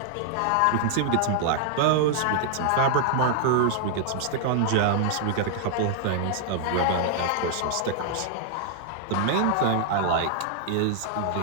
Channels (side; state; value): both; different; correlation -0.01